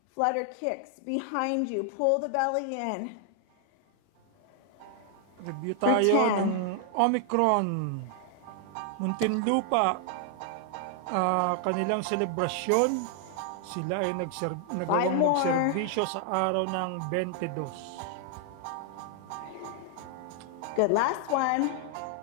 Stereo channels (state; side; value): different; both; correlation 0.00